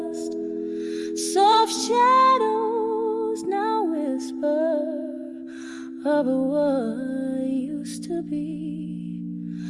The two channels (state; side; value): identical; both; correlation 1.00